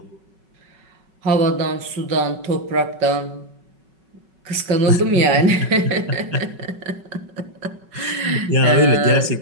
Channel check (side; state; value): left; late; 5.3 ms